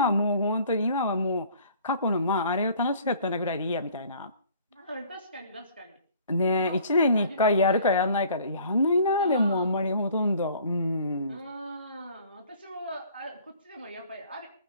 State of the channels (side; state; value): both; inverted; correlation -0.53